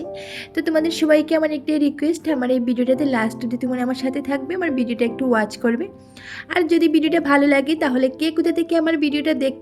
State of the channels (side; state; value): both; identical; correlation 1.00